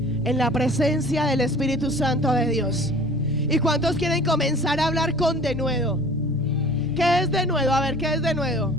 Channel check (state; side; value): normal; both; correlation 0.46